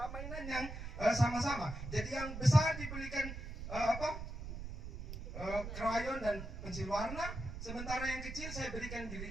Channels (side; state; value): right; noise; rumble, 8 dB below the sound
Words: mainan yang sama-sama. Jadi yang besar dibelikan krayon dan pensil warna, sementara yang kecil saya berikan